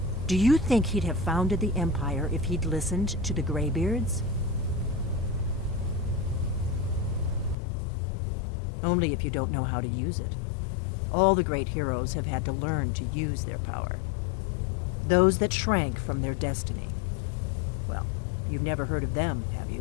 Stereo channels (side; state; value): right; drops out; at 7.6 s